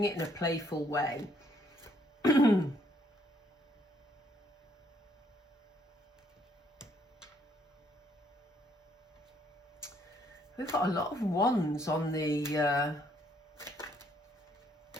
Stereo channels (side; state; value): both; normal; correlation 0.68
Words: it in a playful way. We've got a lot of wands on the